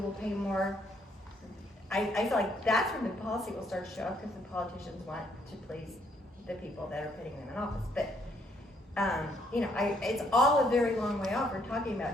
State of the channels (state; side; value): normal; both; correlation 0.69